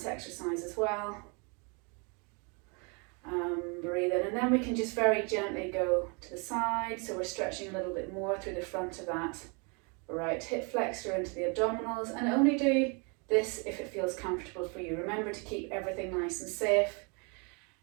exercise as well. Breathe in, and then we can just very gently go to the side. So we're stretching a little bit more through the front of that right hip flexor into the abdominals, and only do this if it feels comfortable for you. Remember to keep everything nice and safe.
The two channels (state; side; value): quieter; left; 33.5 dB